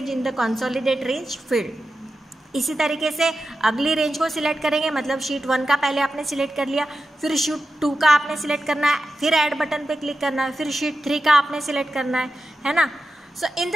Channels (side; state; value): both; normal; correlation 0.91